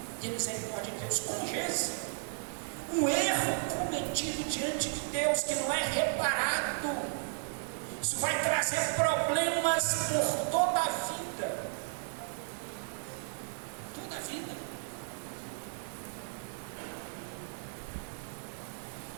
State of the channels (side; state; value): left; silent; digital silence